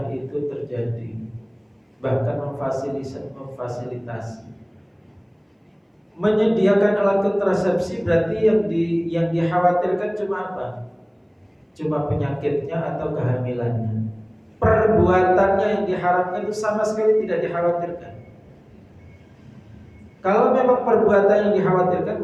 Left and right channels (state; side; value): identical; both; correlation 1.00